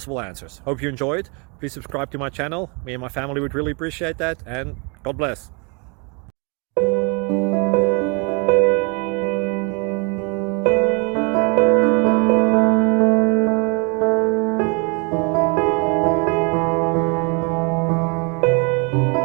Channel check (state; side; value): quieter; left; 33.0 dB